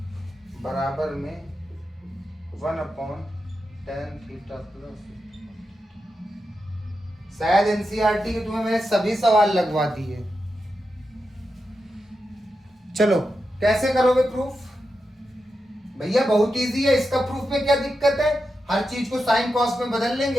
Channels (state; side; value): normal; both; correlation 0.89